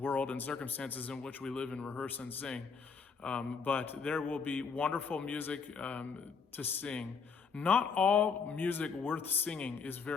and circumstances in which we live and rehearse and sing. But there will be wonderful music to sing. Not all music worth singing is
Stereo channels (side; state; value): right; quieter; 5.6 dB